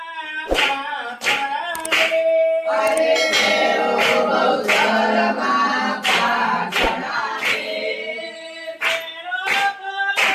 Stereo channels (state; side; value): identical; both; correlation 1.00